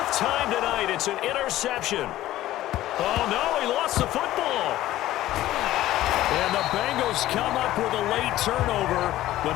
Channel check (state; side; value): quieter; right; 14.8 dB